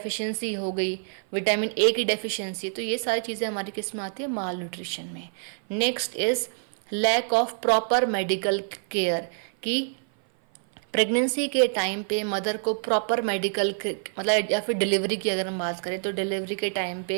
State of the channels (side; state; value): left; silent; 56 dB below the other